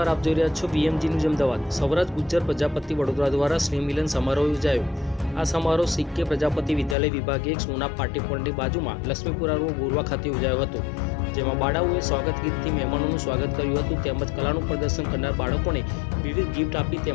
આપ જોઈ રહ્યા છો BMG ન્યૂઝ અમદાવાદ। સૌરાષ્ટ્ર ગુજ્જર પ્રજાપતિ વડોદરા દ્વારા સ્નેહ મિલન સમારોહ યોજાયો। આ સમારોહ CK પ્રજાપતિ વિદ્યાલય વિભાગ 1 સોના પાટી પોળની બાજુમાં લક્ષ્મીપુરા રોડ ગોરવા ખાતે યોજાયો હતો, જેમાં બાળાઓએ સ્વાગત ગીતથી મહેમાનોનું સ્વાગત કર્યું હતું તેમજ કલાનું પ્રદર્શન કરનાર બાળકોને વિવિધ ગિફ્ટ આપી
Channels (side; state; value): right; drops out; at 7.0 s